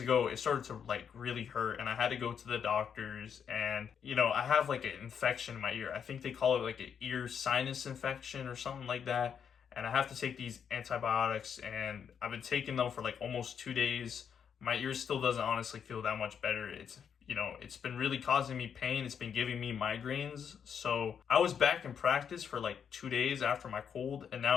it started to like really hurt. And I had to go to the doctors. And, I have like an infection in my ear. I think they call it like an ear sinus infection or something like that. And I have to take these antibiotics. And I've been taking them for like almost 2 days. My ear still doesn't honestly feel that much better. It's been really causing me pain. It's been giving me migraines. So I was back in practice for like 2 days after my cold, and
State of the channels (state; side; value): quieter; right; 7.6 dB